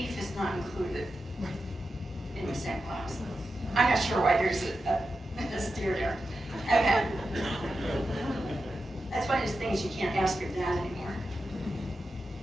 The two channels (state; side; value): normal; both; correlation 0.90